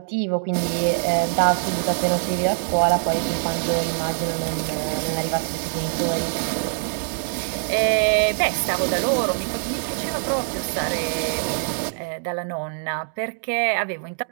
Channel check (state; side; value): silent; left; 63 dB below the other